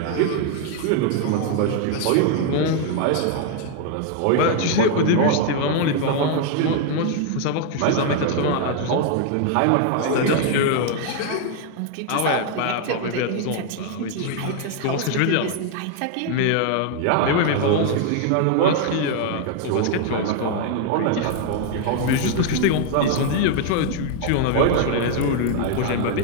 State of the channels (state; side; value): different; both; correlation 0.00